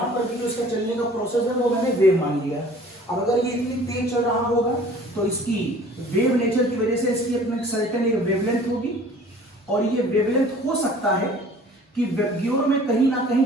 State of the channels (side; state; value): both; normal; correlation 0.49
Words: पर भी जो इसका चलने का प्रोसेस है वो मैंने वेव मान लिया। अब अगर ये इतनी तेज चल रहा होगा तो इसकी वेव नेचर की वजह से इसकी अपने सर्टेन एक वेवलेंथ होगी और ये वेवलेंथ हो सकता है कि वेबग्योर में कहीं ना कहीं